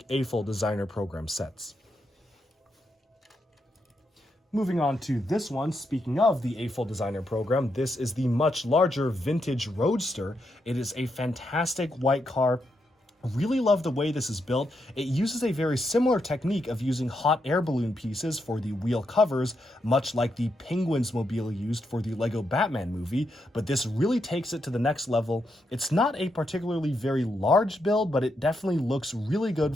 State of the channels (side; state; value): both; normal; correlation 0.82